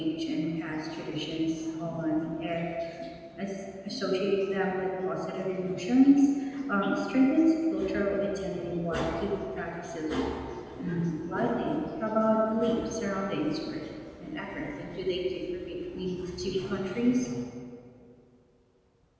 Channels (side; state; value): both; identical; correlation 1.00